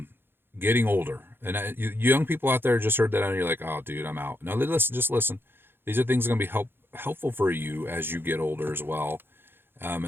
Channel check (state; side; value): late; left; 0.10 ms